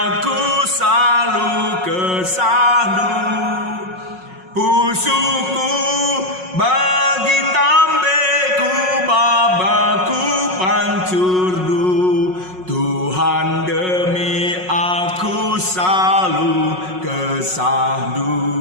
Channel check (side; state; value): left; late; 5.5 ms